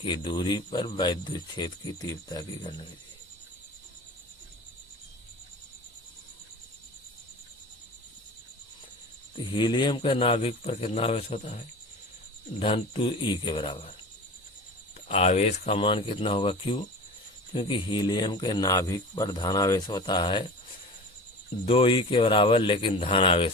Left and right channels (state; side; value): normal; both; correlation 0.35